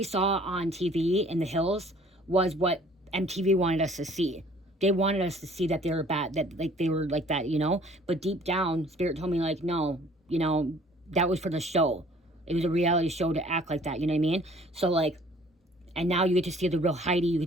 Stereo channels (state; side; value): normal; both; correlation 0.55